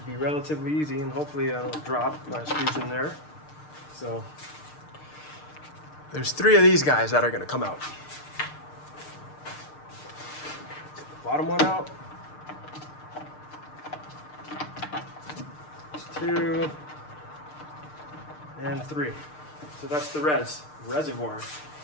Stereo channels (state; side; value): late; right; 6.6 ms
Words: be relatively easy, and hopefully I don't drop when I squeeze in there. So there's 3 of these guys that are gonna come out. Get the bottom one out. There's 2 and 3. So that's the reservoir.